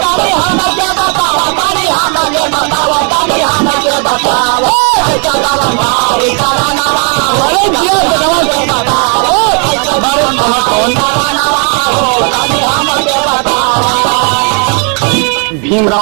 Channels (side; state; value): left; quieter; 38.3 dB